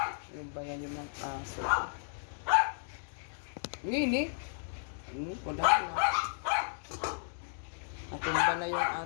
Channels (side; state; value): right; silent; digital silence